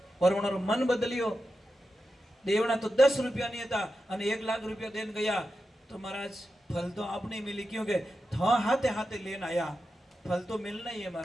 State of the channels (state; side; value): normal; both; correlation 0.90